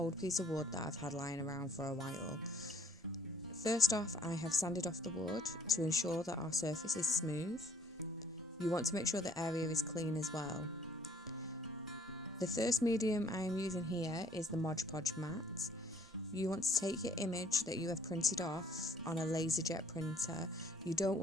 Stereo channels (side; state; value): both; normal; correlation 0.59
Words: piece of wood that I've had lying around for a while. First off, I have sanded off the wood to ensure that our surface is smooth. You want to make sure the area is clean as well. The first medium I am using here is the Podge mat. You want to take your image that you have printed off on a LaserJet printer. You don't